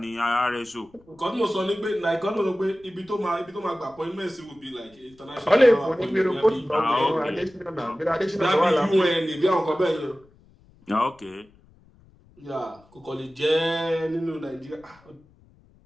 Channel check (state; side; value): noise; left; rumble, 29 dB below the sound